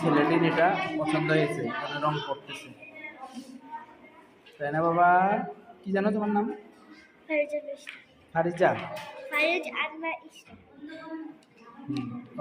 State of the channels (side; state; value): both; identical; correlation 1.00